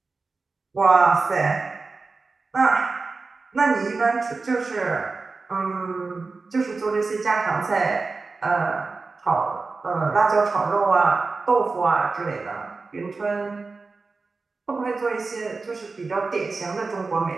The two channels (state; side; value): quieter; left; 4.0 dB